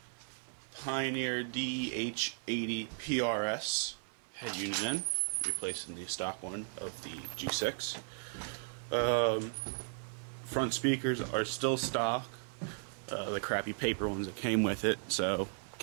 Pioneer DH80 PRS head unit in, replacing the stock one of the G6. Front speakers are still stock, the crappy paper ones that came with it, so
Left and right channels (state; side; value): silent; left; 54 dB below the other